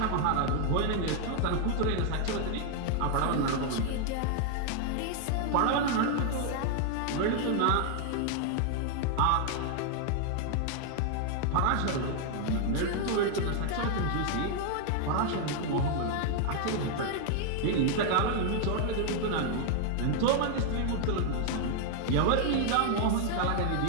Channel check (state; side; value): different; both; correlation 0.00